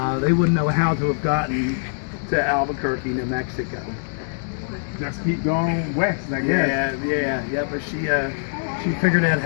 they wouldn't know how to have gotten to Albuquerque, New Mexico. Just keep going west, I guess. Yeah. But she figured out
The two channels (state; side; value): silent; right; digital silence